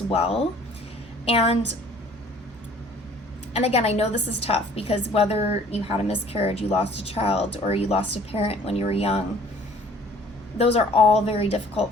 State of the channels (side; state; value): both; normal; correlation 0.54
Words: well. And again, I know this is tough because whether you had a miscarriage, you lost a child, or you lost a parent when you were young, those are all very